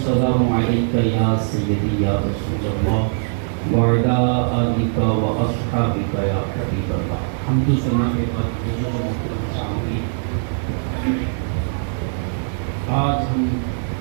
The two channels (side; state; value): left; silent; digital silence